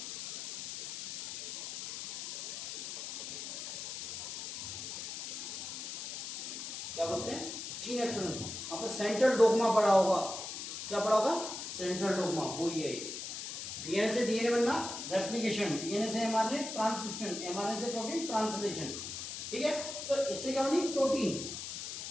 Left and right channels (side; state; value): left; noise; hiss, 6 dB below the sound